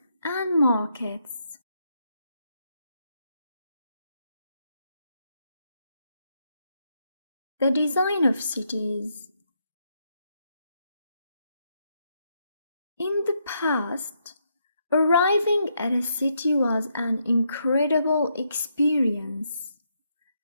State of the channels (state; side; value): inverted; both; correlation -0.78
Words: and markets. The design of cities. In the past, arriving at a city was an incredible experience.